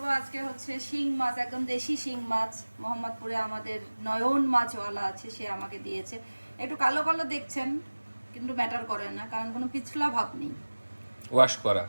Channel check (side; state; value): both; inverted; correlation -1.00